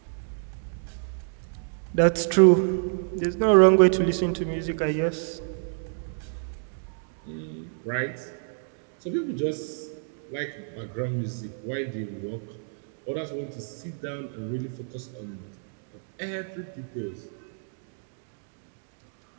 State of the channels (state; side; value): silent; left; digital silence